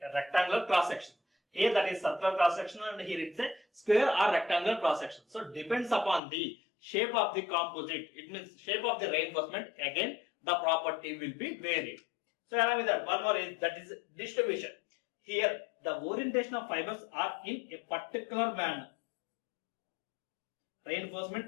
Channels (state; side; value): drops out; right; at 6.2 s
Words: rectangular cross section. Here that is circular cross section and here it's a square or rectangular cross section. So depends upon the shape of the composite. It means shape of the reinforcement. Again the property will be varied. So along with that, one more is that is distribution. Here the orientation of fibers are in a particular manner.